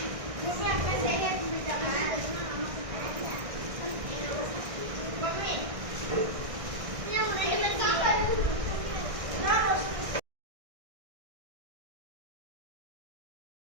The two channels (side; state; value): left; late; 1.6 ms